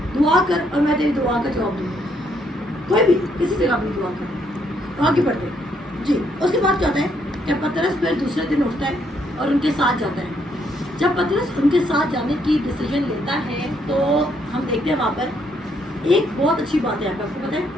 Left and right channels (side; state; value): both; normal; correlation 0.72